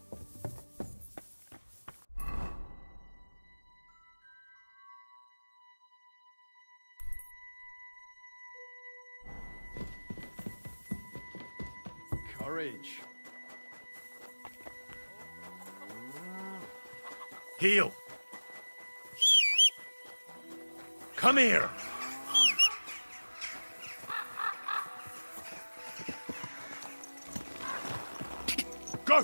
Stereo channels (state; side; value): inverted; both; correlation -1.00